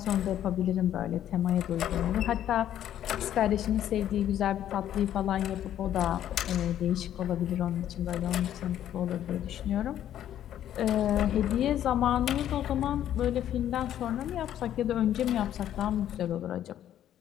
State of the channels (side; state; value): right; quieter; 11.2 dB